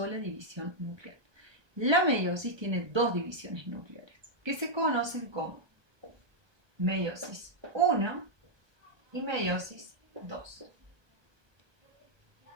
división nuclear. La meiosis tiene dos divisiones nucleares, que se conocen como meiosis 1 y meiosis 2.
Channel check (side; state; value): left; late; 1.2 ms